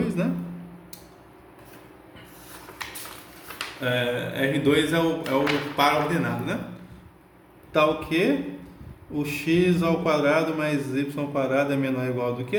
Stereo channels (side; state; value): both; identical; correlation 1.00